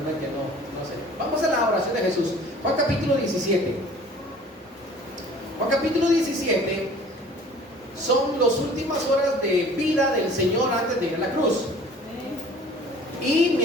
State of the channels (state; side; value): normal; both; correlation 0.49